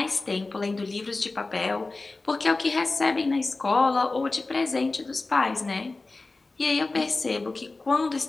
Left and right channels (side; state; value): right; quieter; 3.4 dB